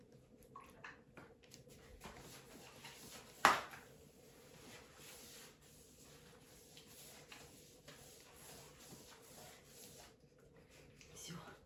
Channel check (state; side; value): identical; both; correlation 1.00